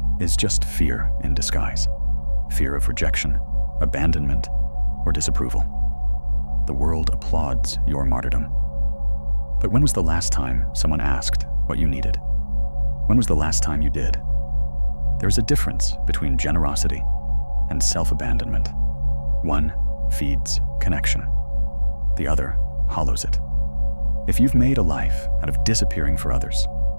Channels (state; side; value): inverted; both; correlation -1.00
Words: is just fear in disguise. Fear of rejection, abandonment, or disapproval. The world applauds your martyrdom. But when was the last time someone asked what you needed? When was the last time you did? There is a difference between generosity and self-abandonment. One feeds connection. The other hollows it. If you've made a life out of disappearing for others,